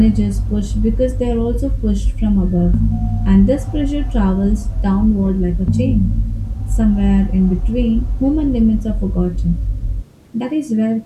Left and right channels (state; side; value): identical; both; correlation 1.00